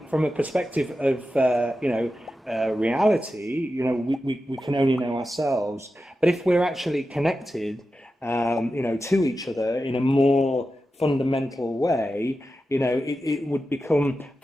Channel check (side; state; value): both; normal; correlation 0.91